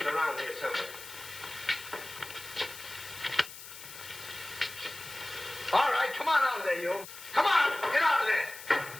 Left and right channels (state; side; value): noise; left; hiss, 14 dB below the sound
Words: around here somewhere. All right, come on out of there, you. Come on, get out of there.